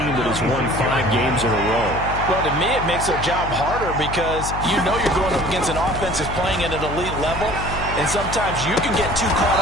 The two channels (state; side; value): noise; left; hum, 7 dB below the sound